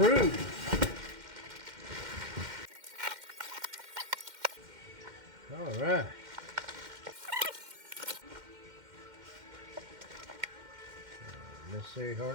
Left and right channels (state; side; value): late; left; 2.1 ms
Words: All right. Necessary